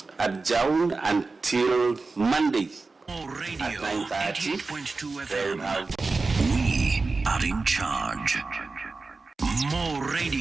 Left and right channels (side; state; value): left; quieter; 3.9 dB